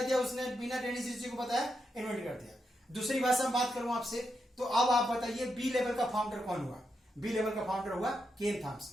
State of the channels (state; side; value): normal; both; correlation 0.84